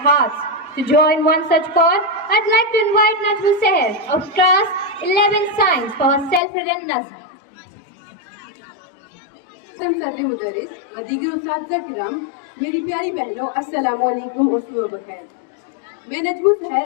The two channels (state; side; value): drops out; right; at 6.4 s